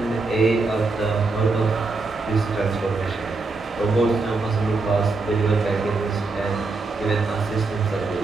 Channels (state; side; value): quieter; left; 3.8 dB